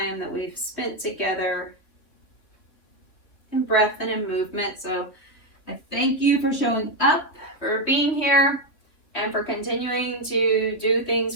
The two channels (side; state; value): right; late; 2.9 ms